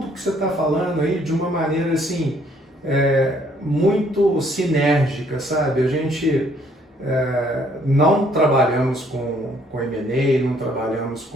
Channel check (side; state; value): both; normal; correlation 0.64